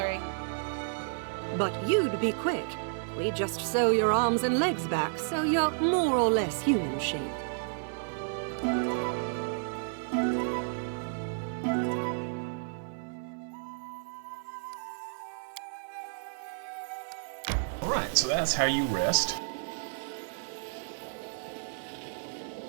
But you'd be quick. We just sew your arms and legs back, so you're more or less human-shaped. Alright, so that's how you rest.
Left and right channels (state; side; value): silent; left; 57 dB below the other